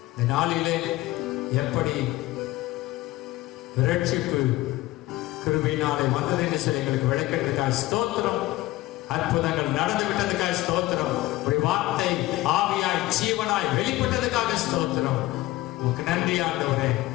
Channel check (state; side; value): quieter; right; 17.8 dB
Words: இந்த நாளிலே எப்படி ரட்சிப்பு கிருபையினாலே வந்தது என்று சொல்லி எங்களுக்கு விளக்கிறதுக்காக ஸ்தோத்திரம். அற்புதங்கள் நடந்து விட்டதுக்காக ஸ்தோத்திரம். ஒரு வார்த்தை ஆவியாய் ஜீவனாய் வெளிப்பட்டதுக்காக ஸ்தோத்திரம். உனக்கு நன்றி ஆண்டவரே,